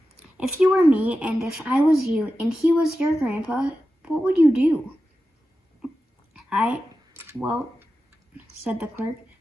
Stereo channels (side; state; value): both; normal; correlation 0.92